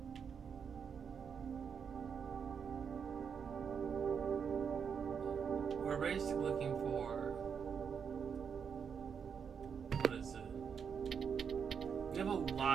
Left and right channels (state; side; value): quieter; left; 6.8 dB